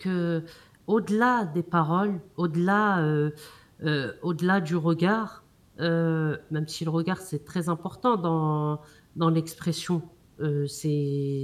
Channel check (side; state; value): both; identical; correlation 1.00